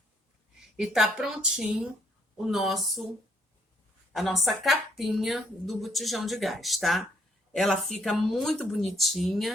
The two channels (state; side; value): normal; both; correlation 0.69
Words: E tá prontinho a nossa capinha do botijão de gás, tá? Ela fica muito